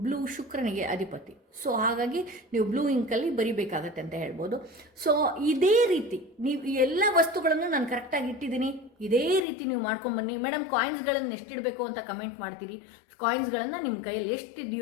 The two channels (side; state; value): right; drops out; at 9.5 s